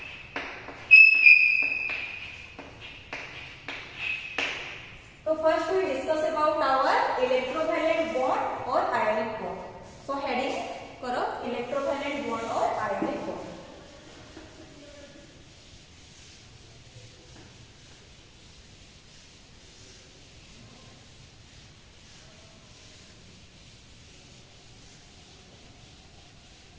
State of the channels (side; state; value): both; identical; correlation 1.00